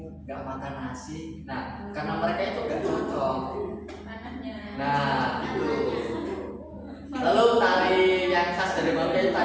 nggak makan nasi? Nah, karena mereka itu nggak cocok. Nah, itu. Lalu tari yang khas dari Maluku itu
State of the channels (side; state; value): both; identical; correlation 1.00